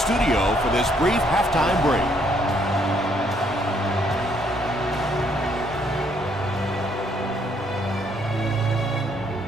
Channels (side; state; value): both; normal; correlation 0.69